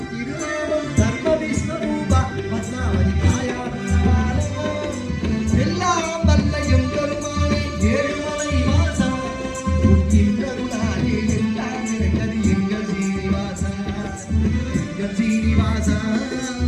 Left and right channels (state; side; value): identical; both; correlation 1.00